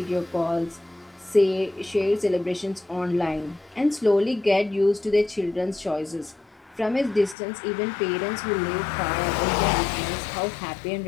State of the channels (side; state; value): right; drops out; at 7.4 s